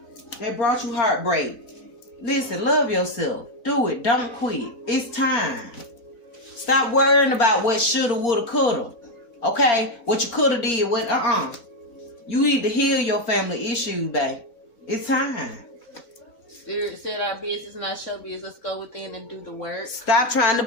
They brought you heartbreak. Listen, love yourself. Do it. Don't quit. It's time. Stop worrying about what shoulda, woulda, coulda. Okay? What you coulda did. What? You need to heal your family issues, babe. It's time. Spirit said our business, not show business. Let's go within and do the work. Stop trying to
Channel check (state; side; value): late; right; 4.3 ms